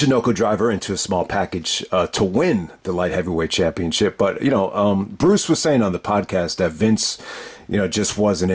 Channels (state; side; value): identical; both; correlation 1.00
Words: driver into a small package to win the light heavyweight championship. But, Bruce was saying on the podcast that Vince, just wasn't